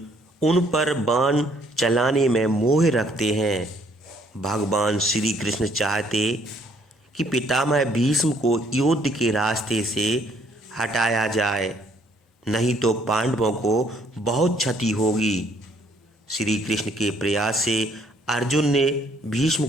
उन पर बाण चलाने में मोह रखते हैं। भगवान श्री कृष्ण चाहते कि पितामह भीष्म को युद्ध के रास्ते से हटाया जाए, नहीं तो पांडवों को बहुत क्षति होगी। श्री कृष्ण के प्रयास से अर्जुन ने भीष्म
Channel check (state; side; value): normal; both; correlation 0.65